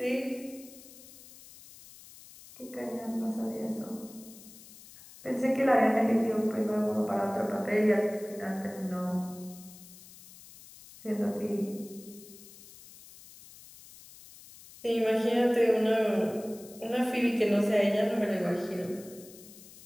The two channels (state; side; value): noise; left; hiss, 20 dB below the sound